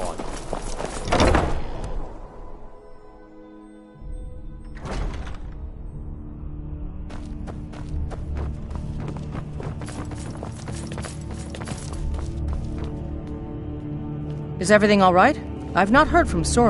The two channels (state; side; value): identical; both; correlation 1.00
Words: Is everything all right? I've not heard from